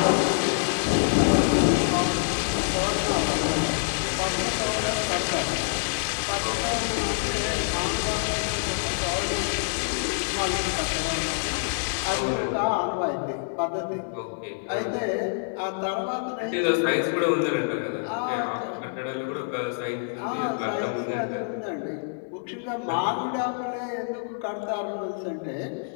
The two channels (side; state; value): right; silent; digital silence